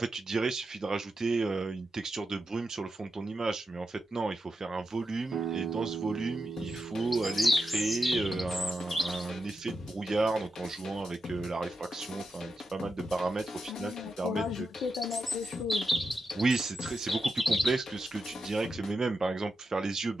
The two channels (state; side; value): normal; both; correlation 0.88